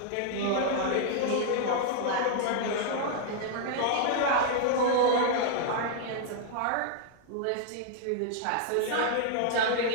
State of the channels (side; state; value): both; different; correlation -0.01